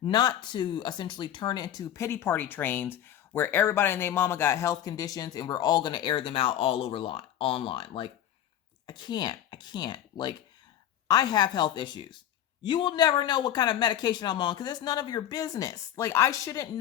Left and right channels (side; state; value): right; quieter; 11.3 dB